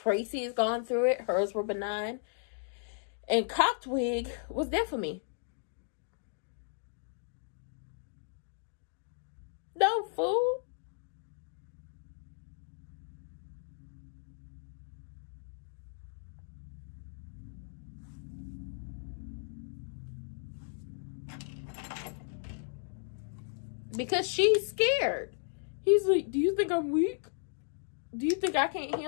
gone through it. Hers were benign. And Cocked Wig was there for me. No, fool. Because she's scared. He's like, do you think I'm weak? Do you think I can't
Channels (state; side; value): silent; right; digital silence